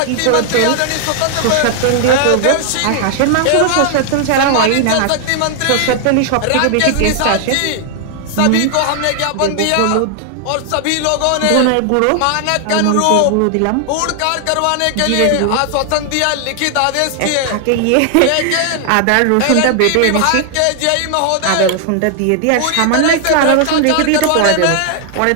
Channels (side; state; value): both; different; correlation 0.00